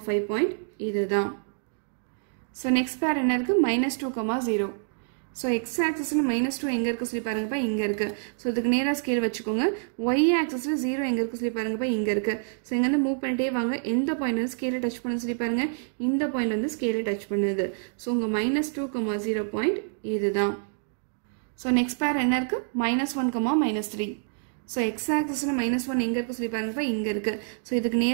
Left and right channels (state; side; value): silent; left; digital silence